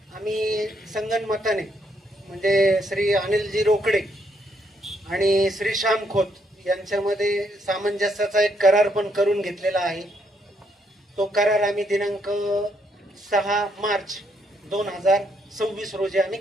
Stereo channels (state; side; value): normal; both; correlation 0.74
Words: आम्ही संगनमताने म्हणजे श्री अनिलजी रोकडे आणि श्री श्याम खोत यांच्यामध्ये सामंजस्याचा एक करार पण करून घेतलेला आहे. तो करार आम्ही दिनांक 6 मार्च 2026 रोजी आम्ही